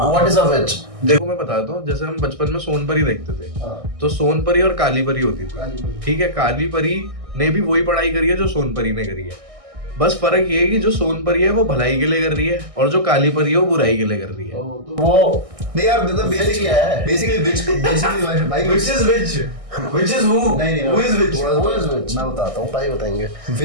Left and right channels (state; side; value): late; left; 1.6 ms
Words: इज अ विच। देखो मैं बताता हूँ, जैसे हम बचपन में सोनपरी देखते थे, तो सोनपरी और काली परी होती थी, ठीक है, काली परी ने भी वही पढ़ाई करी है जो सोनपरी ने करी है, बस फर्क ये है कि जो सोनपरी है वो भलाई के लिए कर रही है और जो काली परी है वो बुराई के लिए कर रही है। तो वो नहीं यार मतलब Witch क्या है? बेसिकली भाई which is which? Which is who? नहीं Who is which? Who is which? मैं बताता हूँ। भाई बताएंगे।